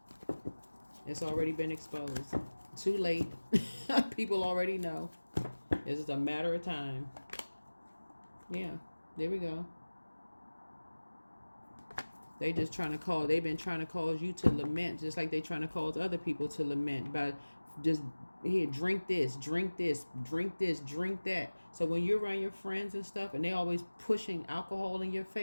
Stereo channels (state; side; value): inverted; both; correlation -1.00